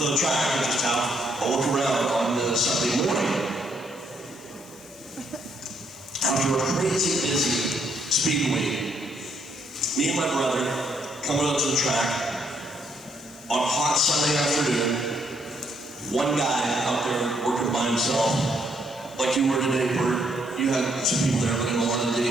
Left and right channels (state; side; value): noise; left; hiss, 25 dB below the sound